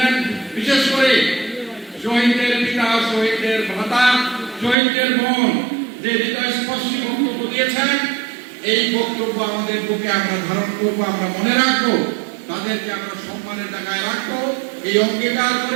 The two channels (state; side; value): drops out; left; at 4.8 s